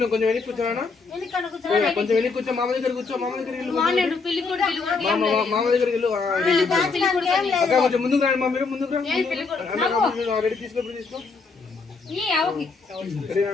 కొంచెం వెనక్కి కూర్చోనా, కొంచెం వెనక్కి కూర్చో. మామ దగ్గర కూర్చో, మామ దగ్గర మామ దగ్గరికి వెళ్ళు. అక్క కొంచెం ముందుకు రండి, మా మీరు ముందుకు రండి. రెడీ తీసుకో, తీసుకో.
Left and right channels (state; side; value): quieter; right; 4.5 dB